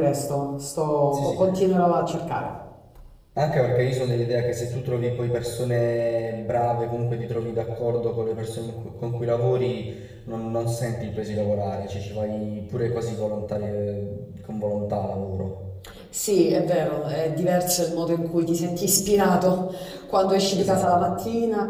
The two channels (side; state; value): both; identical; correlation 1.00